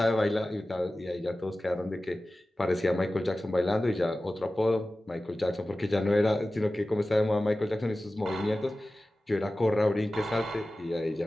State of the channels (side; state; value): both; normal; correlation 0.96